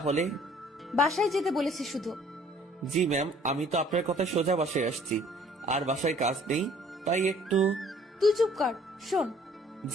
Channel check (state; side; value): normal; both; correlation 0.56